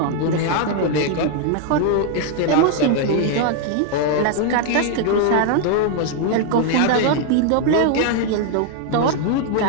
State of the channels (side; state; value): both; different; correlation 0.00